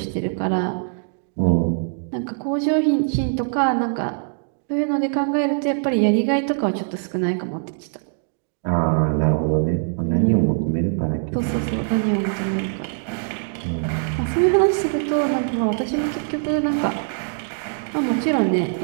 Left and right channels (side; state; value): left; silent; digital silence